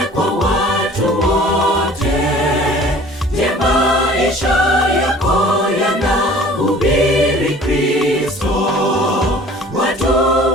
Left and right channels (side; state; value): both; normal; correlation 0.48